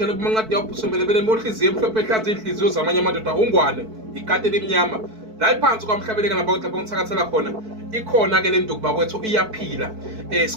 kumancadi yabhusumbelebele mohliziyo emhlophe ehlaza inhliziyo zamanye amadoda ungwane ikati elimnyama la iphansi kwamhlabuyalingana bakwethu lapho ngithakathela khona ikhona ke le nduku bakwethu iyaphila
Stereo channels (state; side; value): late; left; 4.6 ms